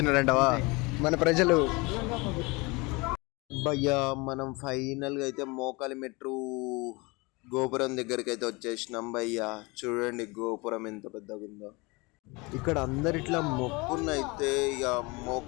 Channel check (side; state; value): right; quieter; 26.0 dB